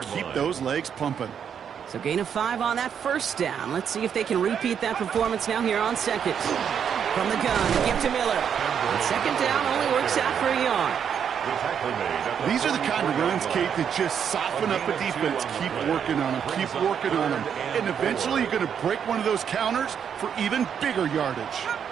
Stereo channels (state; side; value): quieter; left; 7.9 dB